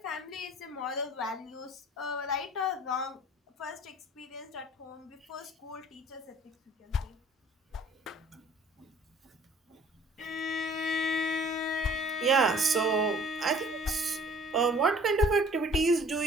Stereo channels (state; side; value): normal; both; correlation 0.53